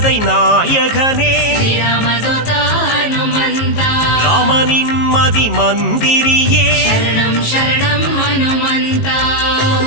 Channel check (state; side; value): late; right; 19 ms